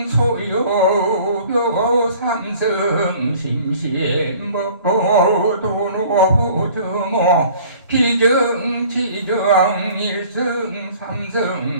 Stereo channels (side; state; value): both; inverted; correlation -0.50